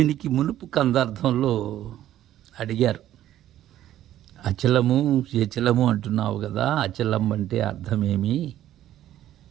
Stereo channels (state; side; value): quieter; left; 12.6 dB